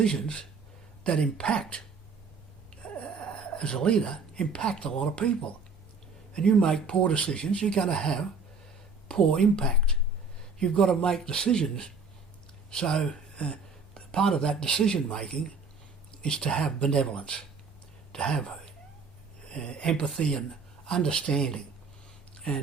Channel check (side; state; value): left; quieter; 4.4 dB